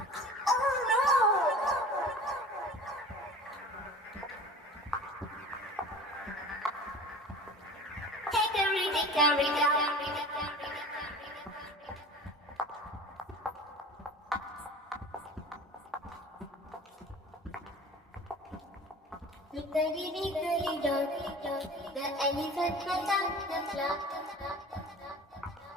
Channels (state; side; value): normal; both; correlation 0.39